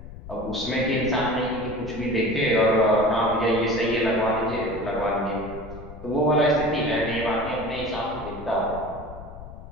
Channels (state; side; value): noise; left; rumble, 14 dB below the sound